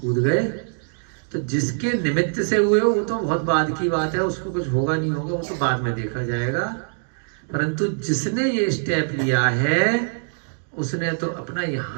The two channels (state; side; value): silent; left; digital silence